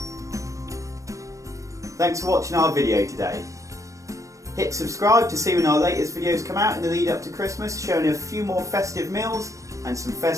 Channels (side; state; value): left; late; 0.16 ms